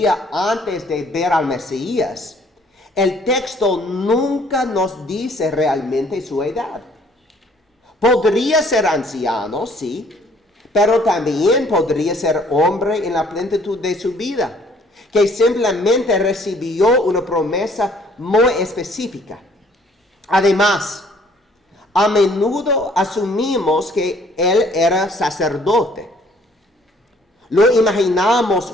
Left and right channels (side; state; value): both; normal; correlation 0.60